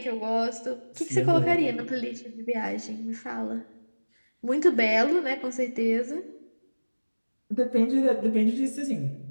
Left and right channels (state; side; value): inverted; both; correlation -1.00